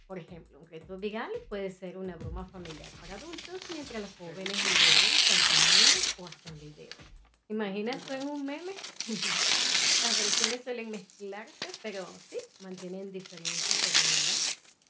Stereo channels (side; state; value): both; identical; correlation 1.00